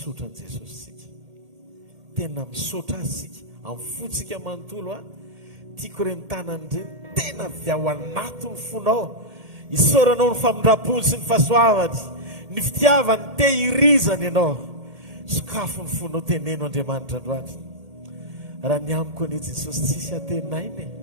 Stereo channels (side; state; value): left; late; 1.8 ms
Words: an' Jesosy sika tena misotra azy sika amin'ny fotsika manontolo tiako re mitanany reny tena avy ao anaty ny fonao isoranao ny famindram-pony sy ny fahasoavany ny fitiavany tehirizany ianao Sakafo ny fonao teneno Andriamanitra androany. Raha ny amiko anie Jesosy tsisy atenainy,